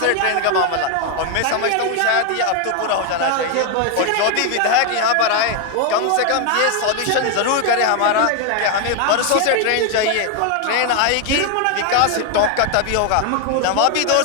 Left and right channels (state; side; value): different; both; correlation 0.01